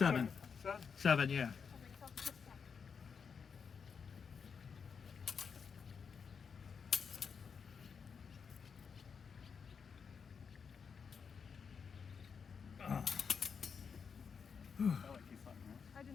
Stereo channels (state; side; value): quieter; right; 6.2 dB